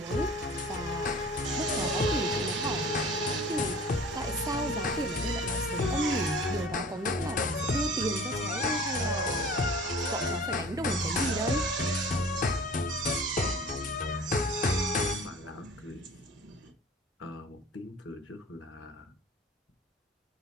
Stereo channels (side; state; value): both; normal; correlation 0.44